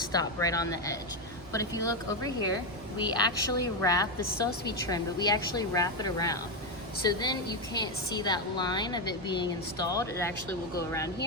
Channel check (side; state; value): both; normal; correlation 0.08